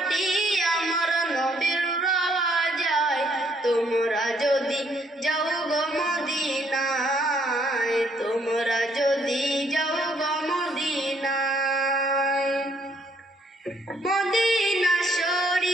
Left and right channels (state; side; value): normal; both; correlation 0.68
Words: আমার নবীর রওজায়, তোমরা যদি যাও গো মদিনায়, তোমরা যদি যাও গো মদিনায়, মদিনা